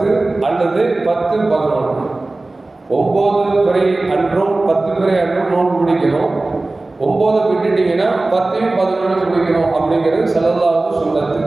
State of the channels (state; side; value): quieter; left; 3.1 dB